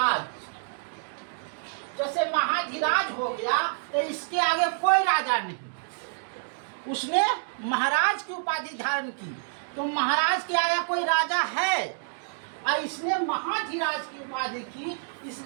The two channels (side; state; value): left; silent; digital silence